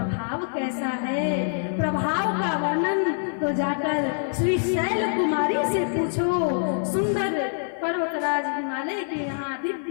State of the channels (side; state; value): right; silent; 56 dB below the other